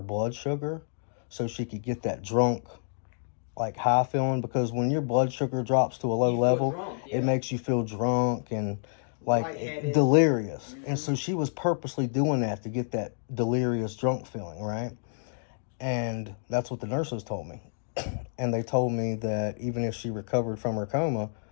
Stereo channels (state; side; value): silent; right; digital silence